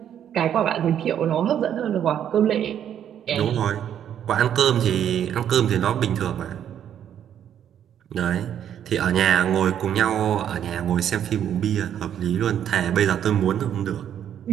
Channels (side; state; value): left; quieter; 9.7 dB